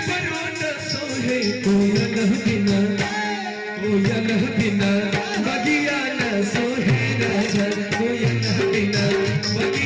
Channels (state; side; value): identical; both; correlation 1.00